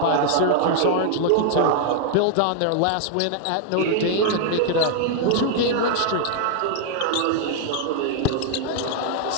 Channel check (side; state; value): both; different; correlation 0.00